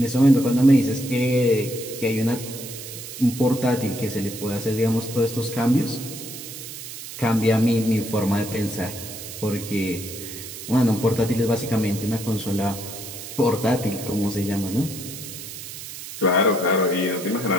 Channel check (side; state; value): right; noise; hiss, 11 dB below the sound